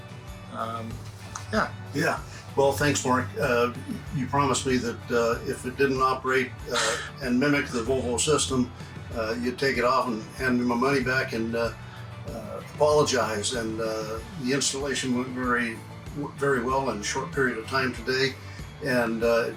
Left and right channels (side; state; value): both; identical; correlation 1.00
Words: Yeah. Well, thanks, Mark. You promised me that if it didn't operate and mimic the Volvo system, you'd take it off and hand me my money back and apologize. And the installation went very well in a short period of time today, and it